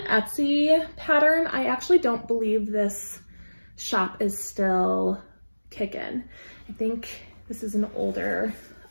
pattern. I actually don't believe this shop is still kicking. I think this is an older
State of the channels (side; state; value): both; inverted; correlation -1.00